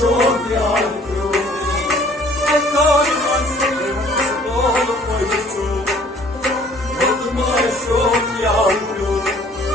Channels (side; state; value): both; normal; correlation 0.56